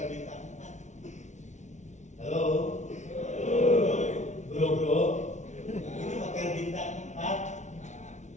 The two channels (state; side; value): late; right; 0.34 ms